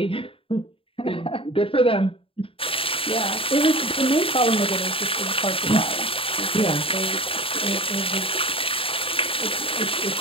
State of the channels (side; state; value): right; late; 0.27 ms